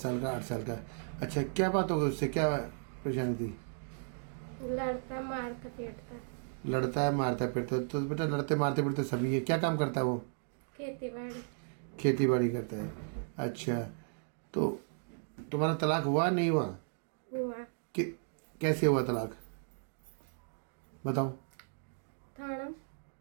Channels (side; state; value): left; silent; digital silence